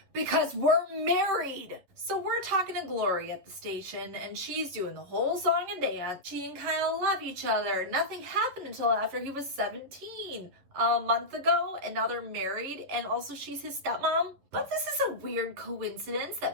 because we're married. So we're talking to Gloria at the station and she's doing the whole song and dance. She and Kyle love each other. Nothing happened until after he was 17 a month ago and now they're married and also she's his stepmom. But this is a weird coincidence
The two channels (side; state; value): left; late; 11 ms